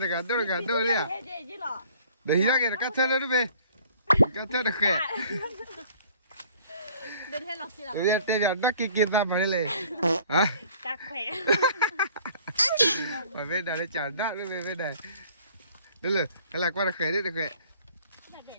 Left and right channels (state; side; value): inverted; both; correlation -0.54